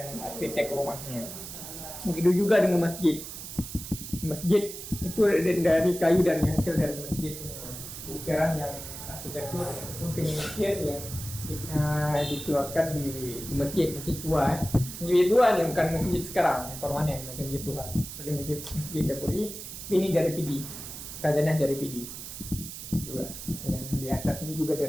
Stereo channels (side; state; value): right; noise; hiss, 10 dB below the sound